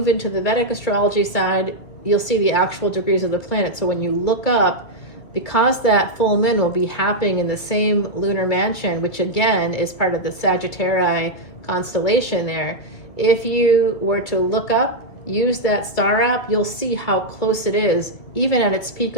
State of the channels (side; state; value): right; late; 2.3 ms